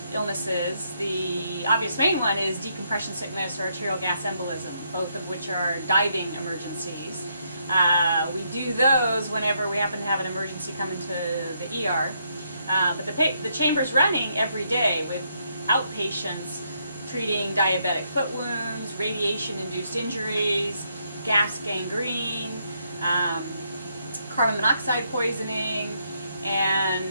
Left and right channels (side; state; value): both; inverted; correlation -0.76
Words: illnesses. The obvious main one is decompression sickness or arterial gas embolism, both of which are diving emergencies. We do those whenever we happen to have an emergency come into the ER. But the chamber's running every day with outpatients treating diabetic foot wounds, radiation-induced injuries, gas gangrene, carbon monoxide poisoning,